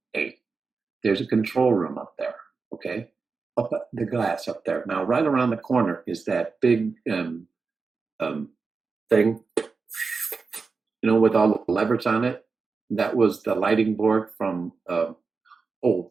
8. There's a control room up there, okay? Up at the glass up there. Now, right around the corner is that big thing, you know, with all the levers on it. That was the lighting board from the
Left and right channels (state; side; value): quieter; left; 4.6 dB